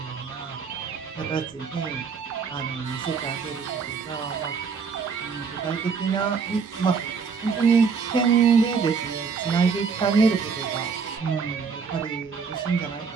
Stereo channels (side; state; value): left; quieter; 5.6 dB